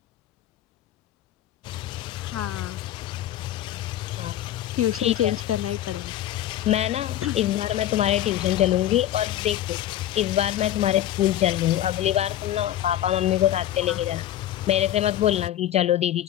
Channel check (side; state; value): right; quieter; 12.4 dB